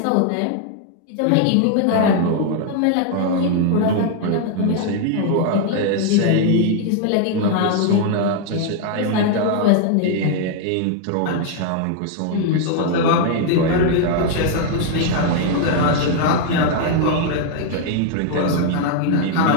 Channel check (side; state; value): both; different; correlation 0.00